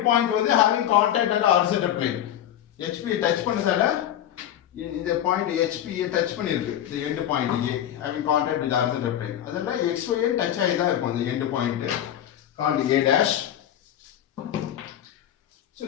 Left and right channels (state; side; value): quieter; right; 11.2 dB